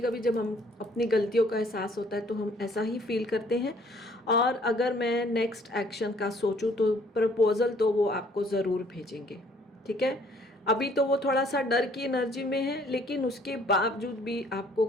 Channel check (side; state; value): both; normal; correlation 0.60